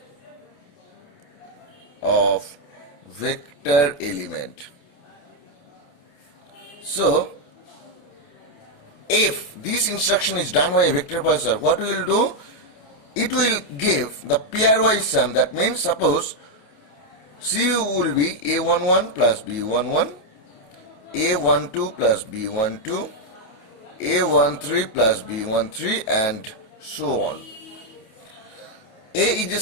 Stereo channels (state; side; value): late; right; 28 ms